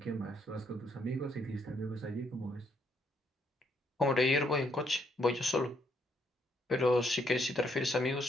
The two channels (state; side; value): normal; both; correlation 0.72